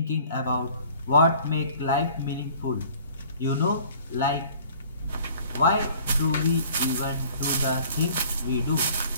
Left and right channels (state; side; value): inverted; both; correlation -0.51